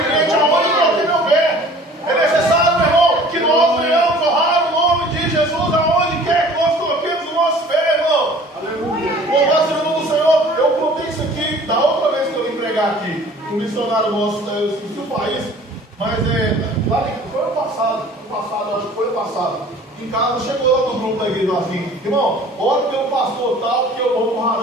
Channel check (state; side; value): normal; both; correlation 0.49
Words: crente aonde eu coloquei meu pé. É necessário, meu irmão, que nós venhamos honrar o nome de Jesus aonde quer que nós coloquemos o nosso pé, irmão. Aleluia. Louvado seja o nome do Senhor. Eu contei isso aqui da outra vez que eu vim pregar aqui. Um missionário nosso, eu esqueci o país, mas foi ano passado, acho que foi ano passado. Em casa, chegou lá no grupo da igreja assim: irmão, ora pelo pastor tal, que eu vou pro